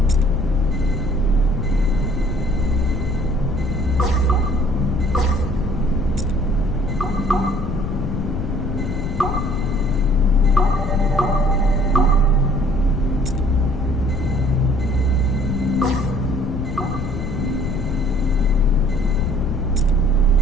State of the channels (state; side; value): noise; left; rumble, 5 dB below the sound